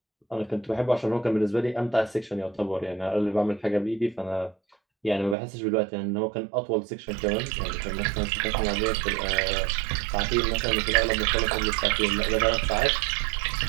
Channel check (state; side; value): drops out; left; at 5.4 s